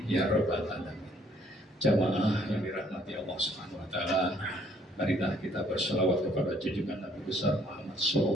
ya rabbal alamin. Jamaah yang dirahmati Allah Subhanahu wa taala, marilah kita berselawat kepada junjungan Nabi besar Muhammad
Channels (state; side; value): normal; both; correlation 0.64